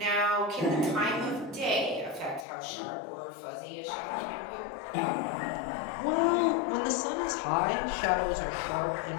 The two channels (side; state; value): right; drops out; at 2.5 s